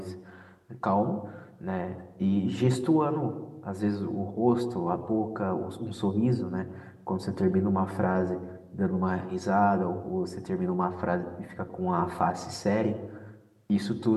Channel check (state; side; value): identical; both; correlation 1.00